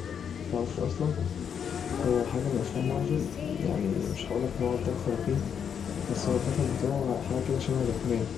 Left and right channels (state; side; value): quieter; right; 7.7 dB